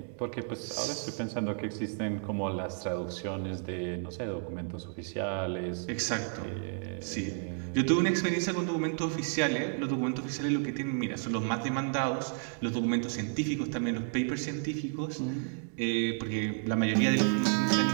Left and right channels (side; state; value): left; silent; 57 dB below the other